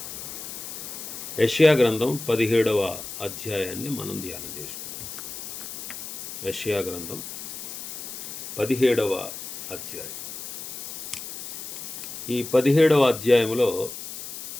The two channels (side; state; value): left; noise; hiss, 9 dB below the sound